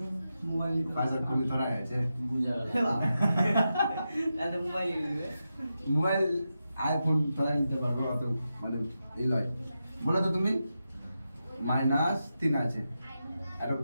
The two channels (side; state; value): both; inverted; correlation -0.89